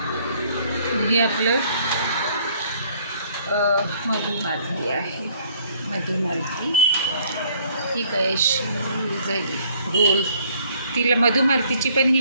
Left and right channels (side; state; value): both; inverted; correlation -0.61